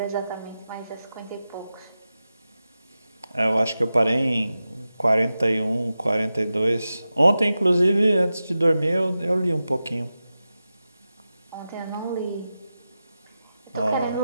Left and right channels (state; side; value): inverted; both; correlation -0.93